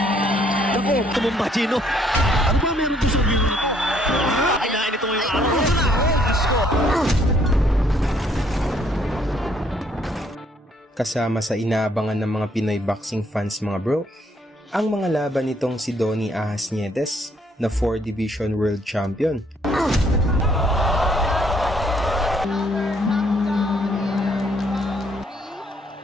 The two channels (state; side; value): normal; both; correlation 0.67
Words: Naku, tumumba, Chino. Ano ba meron ko sa view? Kailangan ito yung araw. Kasama sa inaabangan ng mga Pinoy boxing fans mga bro, ang mga laban nitong si Donnie Ahas Nietes na 4 Division World Champion.